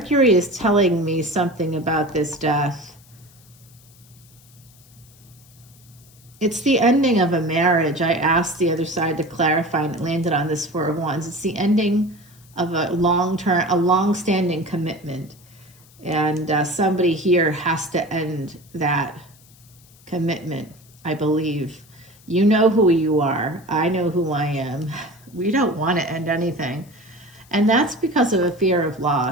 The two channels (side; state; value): left; noise; hiss, 27 dB below the sound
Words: is telling me something about this death. It's the ending of a marriage. I asked the other side to clarify, and it landed on this 4 of Wands. It's the ending of a long-standing commitment. And somebody here has to end that commitment, I believe. You know who you are. I know who I am. We don't want to end anything. And that's because of a fear of